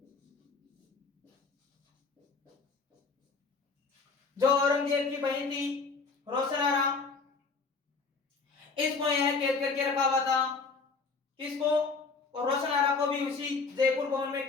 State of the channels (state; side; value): quieter; right; 4.4 dB